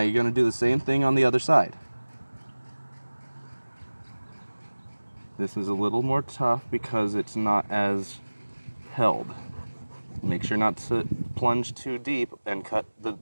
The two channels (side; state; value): both; inverted; correlation -1.00